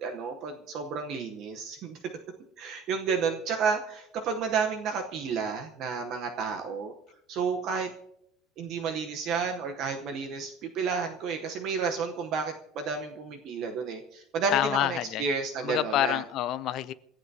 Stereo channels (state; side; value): normal; both; correlation 0.40